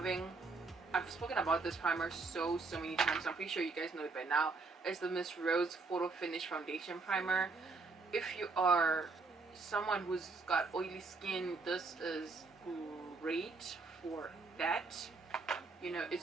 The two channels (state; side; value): quieter; left; 4.0 dB